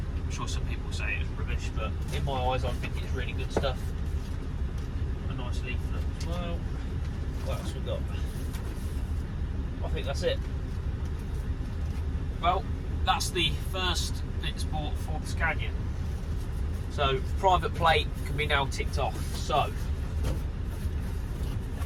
sure some people say it was rubbish, but in my eyes I think it's really good stuff. A nice leaflet as well. What else we got? I think that's it. Well, that's the first bits bought for the Scania. So private plate can be now ticked off. So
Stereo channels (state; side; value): identical; both; correlation 1.00